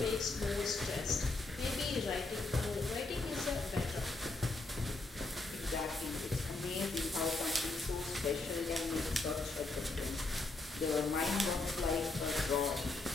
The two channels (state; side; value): quieter; right; 3.4 dB